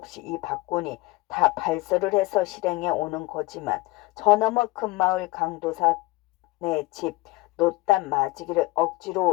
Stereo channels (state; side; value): quieter; right; 21.1 dB